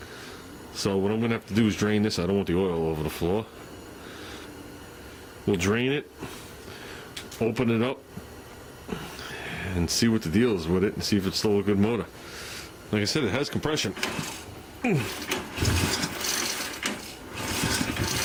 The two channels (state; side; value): identical; both; correlation 1.00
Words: So what I'm going to have to do is drain this. I don't want the oil over the floor. We'll drain it, open it up, and see what the deal is with it, and see if it's still a good motor. Like I said, it has compression.